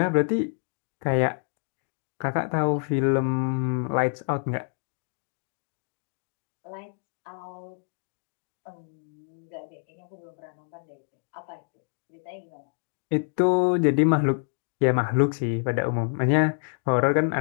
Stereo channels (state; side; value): silent; right; 60 dB below the other